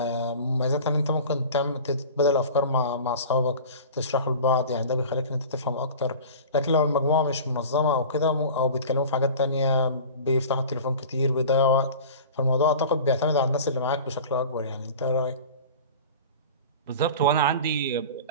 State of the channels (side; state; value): both; inverted; correlation -0.37